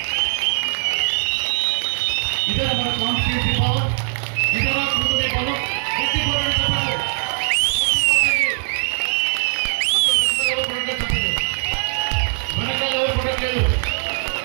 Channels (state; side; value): silent; left; 65 dB below the other